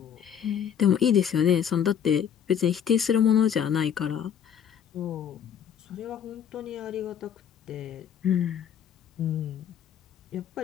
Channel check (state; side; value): quieter; right; 8.6 dB